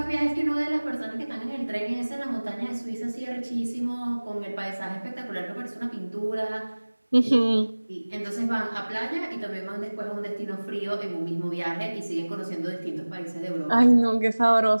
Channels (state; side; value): inverted; both; correlation -1.00